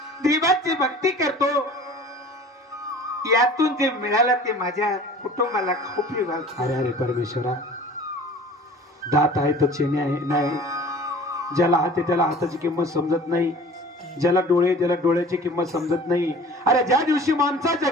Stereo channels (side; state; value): both; normal; correlation 0.44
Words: देवाची भक्ती करतो, यातून जे मिळालं ते माझ्या कुटुंबाला खाऊ पिऊ घालतो. अरे अरे परमेश्वरा, दात आहे तर चेने आहे नाही. ज्याला हात आहे त्याला हाताची किंमत समजत नाही, ज्याला डोळे त्याला डोळ्याची किंमत समजत नाही. अरे ज्या दिवशी माणसाच्या